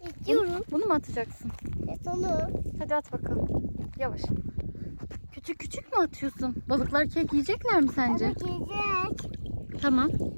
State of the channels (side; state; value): both; inverted; correlation -1.00